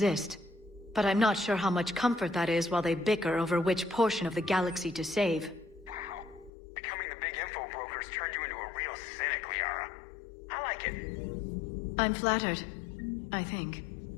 But I'm not sure how much comfort that is while they bicker over which portion of the galaxy to save. Wow. Becoming the big info brokers turned you into a real cynic, Liara. I like it. I'm flattered. I think.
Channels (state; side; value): drops out; right; at 6.5 s